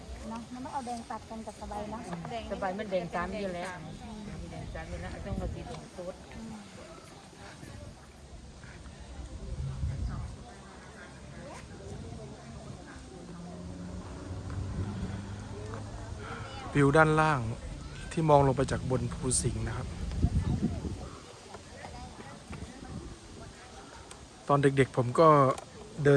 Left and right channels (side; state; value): both; identical; correlation 1.00